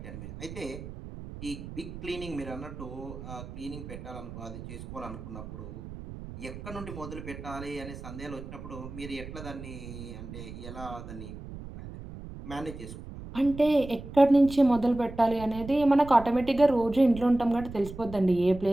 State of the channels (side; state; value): right; noise; rumble, 12 dB below the sound